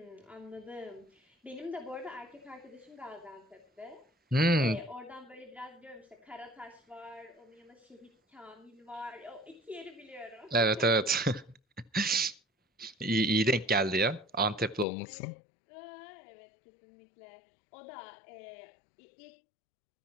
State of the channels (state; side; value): drops out; right; at 14.9 s